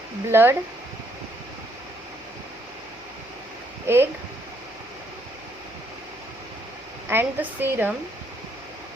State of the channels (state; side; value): noise; left; hum, 26 dB below the sound